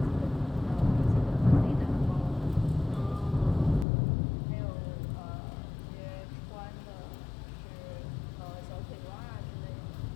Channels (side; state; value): right; drops out; at 3.9 s